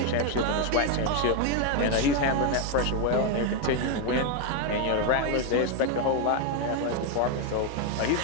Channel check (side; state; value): both; different; correlation 0.01